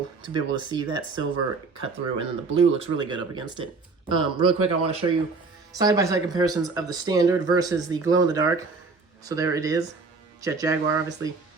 to be able to see that silver cut through, and then the blue looks really good up against it. Real quick, I want to show you side-by-side comparisons of the standard versus the glow-in-the-dark. So there it is, Jet Jaguar. Obviously,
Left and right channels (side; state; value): left; quieter; 4.2 dB